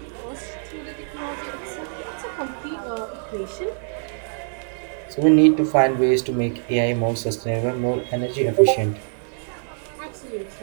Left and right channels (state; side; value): silent; left; digital silence